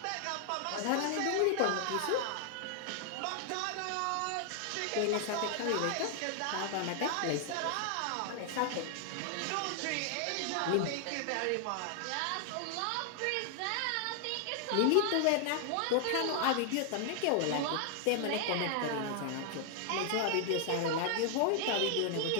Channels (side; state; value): both; different; correlation 0.00